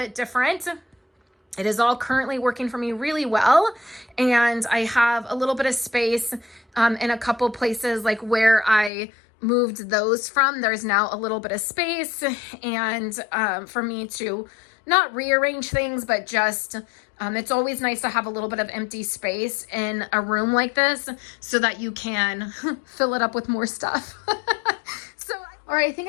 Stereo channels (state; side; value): drops out; right; at 8.9 s